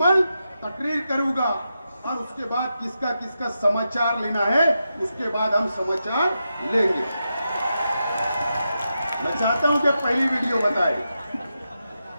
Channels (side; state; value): both; inverted; correlation -0.87